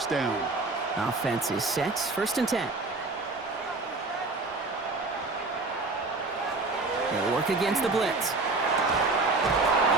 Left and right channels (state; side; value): quieter; left; 3.5 dB